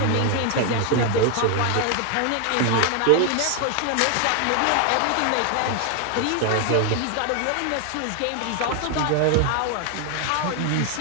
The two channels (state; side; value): different; both; correlation 0.01